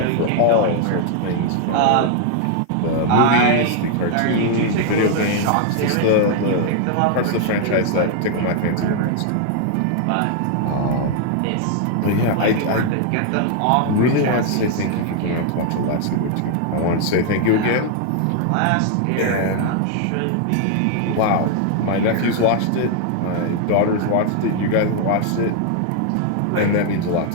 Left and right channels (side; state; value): both; different; correlation 0.00